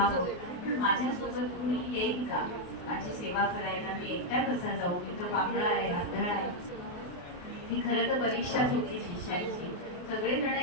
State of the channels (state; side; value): late; right; 28 ms